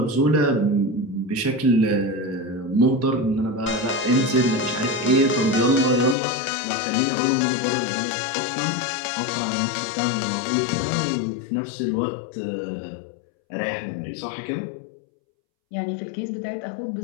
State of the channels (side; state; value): right; drops out; at 6.2 s